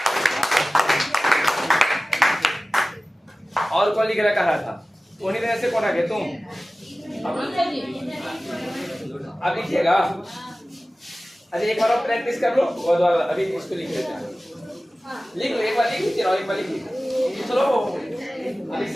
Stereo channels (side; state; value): both; normal; correlation 0.97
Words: और कौन लिख रहा था? उन्हीं तरह से कौन आ गए तुम? अब लिखिएगा। अच्छा, एक बार और प्रैक्टिस कर लो, और अभी इसको लिख लेते हैं। लिख लो, एक बार लिख लीजिए और एक बार लिख लीजिए। चलो, अभी